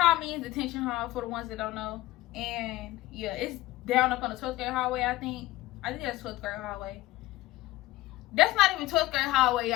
means detention hall for the ones that don't know. And yeah, it's down up on the 12th grade hallway, I think. I think that's 12th grade hallway. That's not even 12th grade hallway,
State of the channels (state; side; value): quieter; right; 17.4 dB